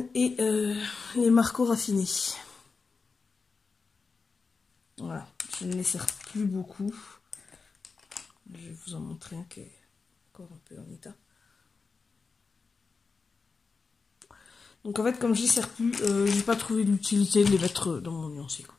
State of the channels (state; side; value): quieter; right; 4.6 dB